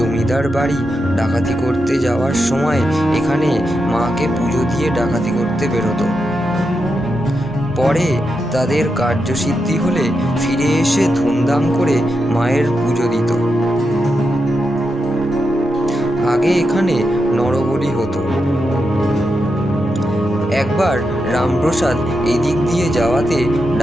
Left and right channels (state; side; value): normal; both; correlation 0.86